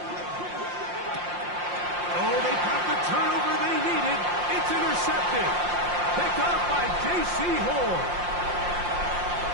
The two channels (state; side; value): late; left; 5.7 ms